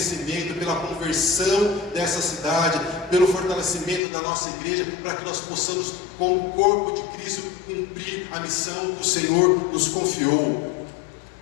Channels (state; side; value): drops out; right; at 4.0 s